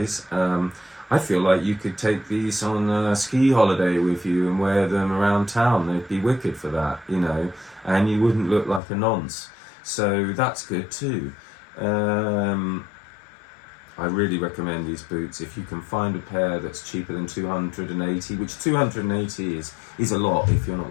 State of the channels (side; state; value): right; drops out; at 8.8 s